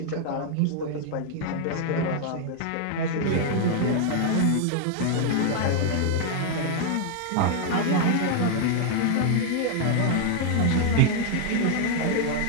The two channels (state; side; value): different; both; correlation 0.00